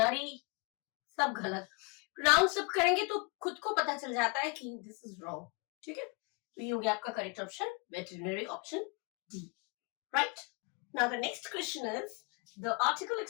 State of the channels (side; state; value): right; quieter; 31.2 dB